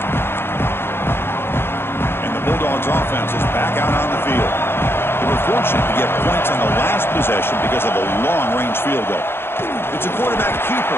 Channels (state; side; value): late; right; 0.11 ms